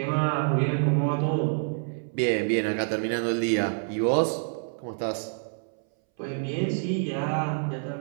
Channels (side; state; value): left; silent; 60 dB below the other